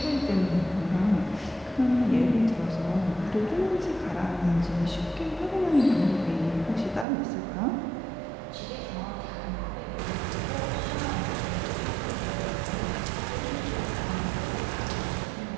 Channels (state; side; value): drops out; left; at 7.1 s